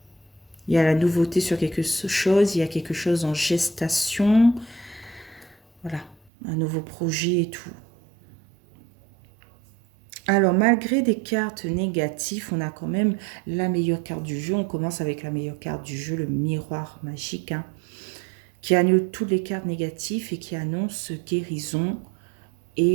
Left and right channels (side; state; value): left; drops out; at 6.3 s